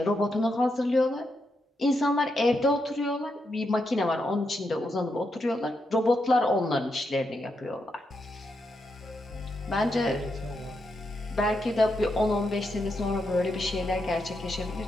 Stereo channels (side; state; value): both; normal; correlation 0.83